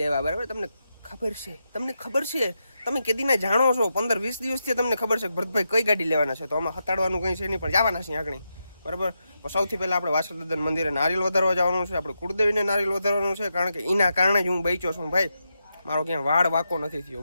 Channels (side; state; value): both; inverted; correlation -0.86